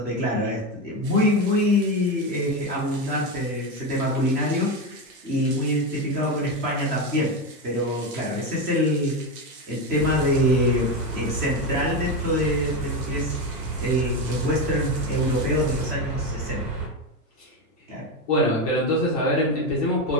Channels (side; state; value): both; normal; correlation 0.14